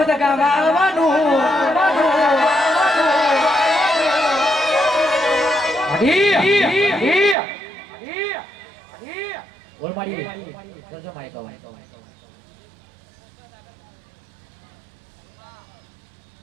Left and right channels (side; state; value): left; drops out; at 7.4 s